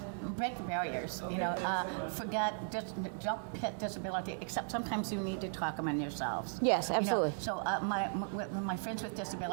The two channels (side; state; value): left; silent; digital silence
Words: break the barriers. Don't pit disability. Except sometimes you need to talk among yourselves. Yes, absolutely. So my friends with